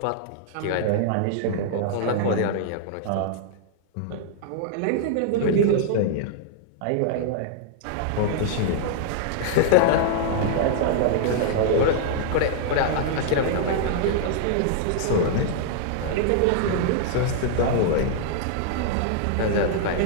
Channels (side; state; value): both; different; correlation -0.01